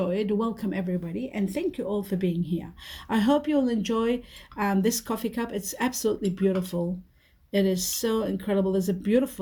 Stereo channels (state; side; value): identical; both; correlation 1.00